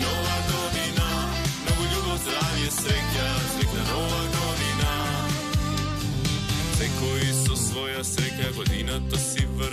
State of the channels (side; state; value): both; identical; correlation 1.00